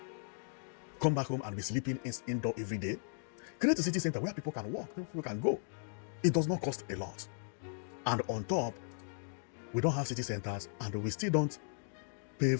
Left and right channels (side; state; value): right; silent; digital silence